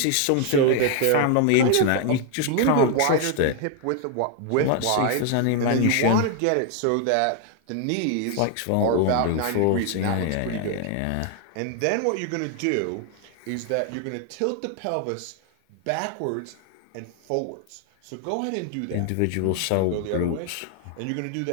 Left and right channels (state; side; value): different; both; correlation 0.01